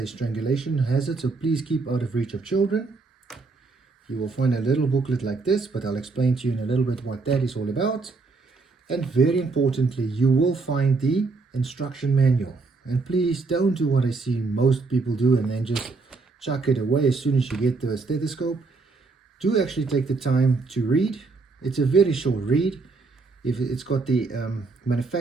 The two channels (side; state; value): left; quieter; 4.0 dB